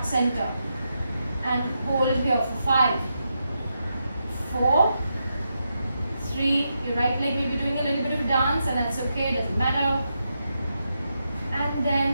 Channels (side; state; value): both; inverted; correlation -0.85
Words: center and hold here for 5, 4, 3. Your right leg may be doing a little bit of a dance, and that's okay, doesn't matter. And